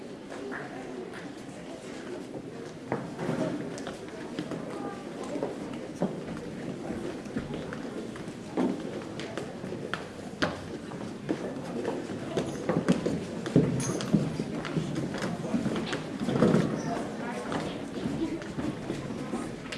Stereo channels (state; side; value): identical; both; correlation 1.00